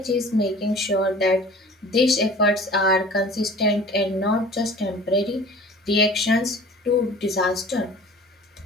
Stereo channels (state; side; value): normal; both; correlation 0.44